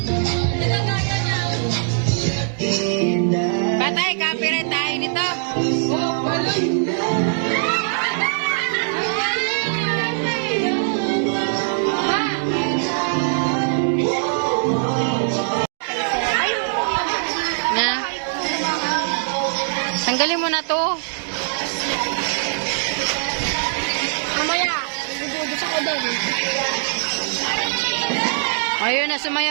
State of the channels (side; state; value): left; silent; digital silence